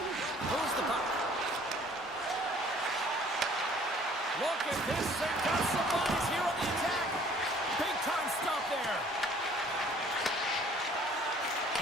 Moves the puck. Look at this. They've got some bodies here on the attack. Big time stop there.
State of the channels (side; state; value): both; normal; correlation 0.55